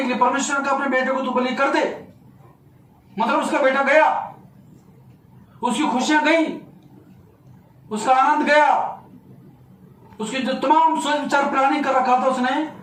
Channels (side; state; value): both; identical; correlation 1.00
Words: लिए, परमेश्वर ने कहा अपने बेटे को तू बलि कर दे, मतलब उसका बेटा गया, उसकी खुशियां गई, उसका आनंद गया, उसकी जो तमाम सोच विचार प्लानिंग कर रखा था उसने